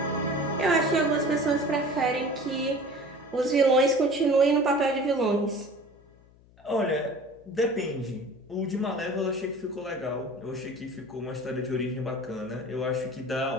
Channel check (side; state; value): left; noise; hum, 27 dB below the sound